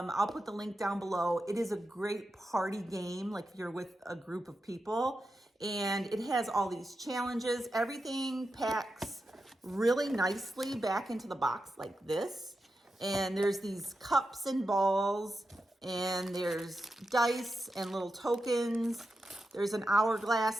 put the link down below. It is a great party game, like if you're with a group of people, and it has all these challenges. Everything packs really nicely back into the box like this. And there's these cups and balls, and there's dice and little tokens. There's an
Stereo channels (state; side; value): normal; both; correlation 0.89